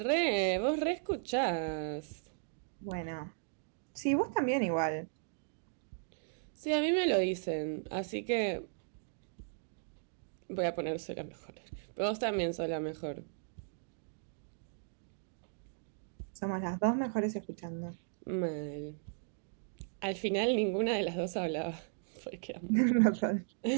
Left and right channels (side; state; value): left; silent; digital silence